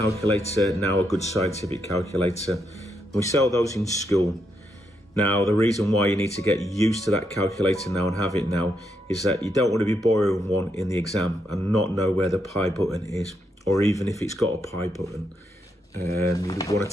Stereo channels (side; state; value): both; normal; correlation 0.80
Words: now, a good scientific calculator. We sell those in school. Now, the reason why you need to get used to that calculator now and have it now is that you don't want to be borrowing one in the exam and not know where the pi button is, or even if it's got a pi button. You want